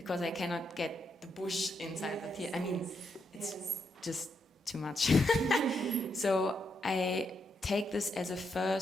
I cannot get the bush inside the theater. I mean, it's just too much. So I take this as a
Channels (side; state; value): both; normal; correlation 0.80